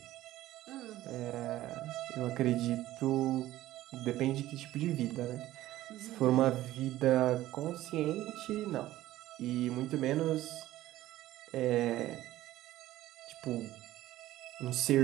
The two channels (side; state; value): left; quieter; 15.1 dB